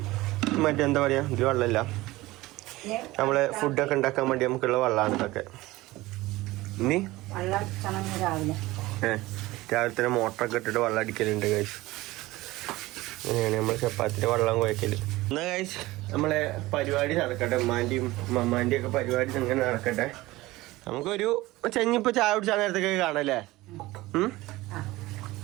മറ്റെന്താ പറയാ ഇത് വെള്ളമില്ല, നമ്മളെ ഫുഡൊക്കെ ഉണ്ടാക്കാൻ വേണ്ടി നമുക്കുള്ള വെള്ളമാണ് ഇതൊക്കെ. ഇനി രാവിലെ തന്നെ മോട്ടറൊക്കെ ഇട്ടിട്ട് വെള്ളം അടിക്കലുണ്ട് ഗൈസ്. അങ്ങനെയാണ് നമ്മൾ ചപ്പാത്തിൻ്റെ വെള്ളം കുഴക്കല്. എന്നാ ഗൈസ് നമ്മളെ പരിപാടി നടക്കട്ടെ. ഉമ്മാൻ്റെയും മമ്മാൻ്റെയും ഒക്കെ പരിപാടി അങ്ങനെ നടക്കട്ടെ. നമുക്കൊരു ചെഞ്ഞിപ്പോ ചായ കുടിച്ചാൽ നേരത്തൊക്കെ കാണല്ലേ?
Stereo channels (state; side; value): quieter; left; 19.0 dB